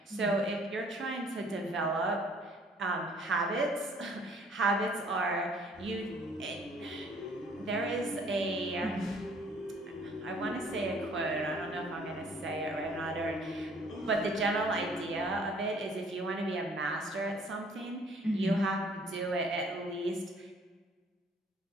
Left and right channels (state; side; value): normal; both; correlation 0.58